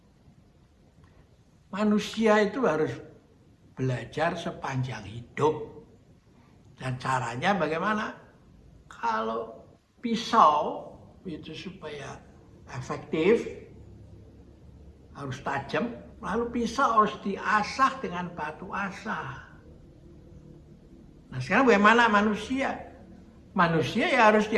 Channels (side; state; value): both; identical; correlation 1.00